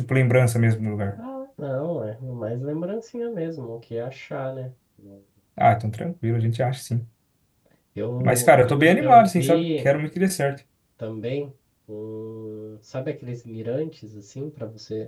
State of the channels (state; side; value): identical; both; correlation 1.00